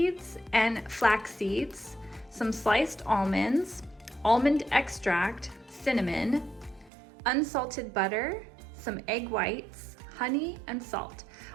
and flax seeds, some sliced almonds, almond extract, cinnamon, unsalted butter, some egg whites, honey, and salt.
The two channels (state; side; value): drops out; left; at 6.9 s